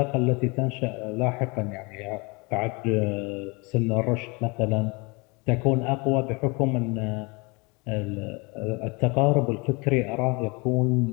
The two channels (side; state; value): right; quieter; 28.4 dB